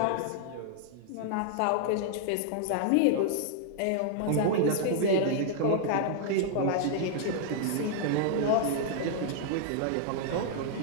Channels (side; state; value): both; different; correlation -0.01